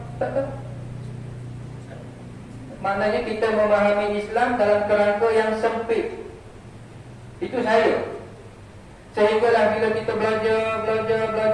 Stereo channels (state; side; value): identical; both; correlation 1.00